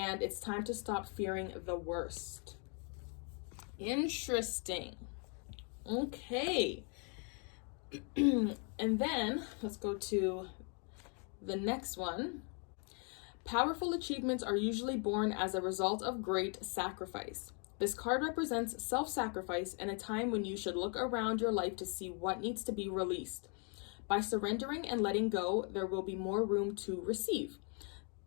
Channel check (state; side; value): quieter; right; 38.6 dB